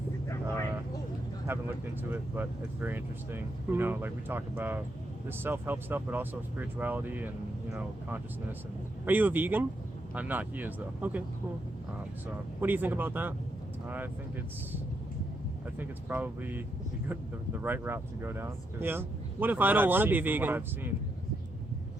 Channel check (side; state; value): both; normal; correlation 0.80